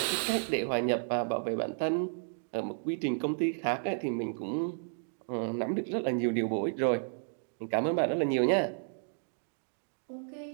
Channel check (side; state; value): left; silent; digital silence